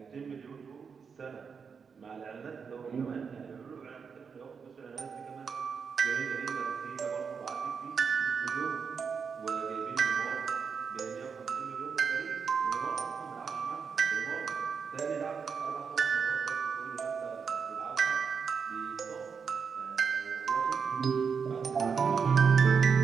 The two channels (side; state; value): left; quieter; 6.0 dB